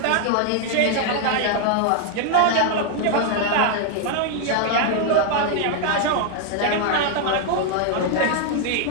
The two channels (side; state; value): both; different; correlation 0.00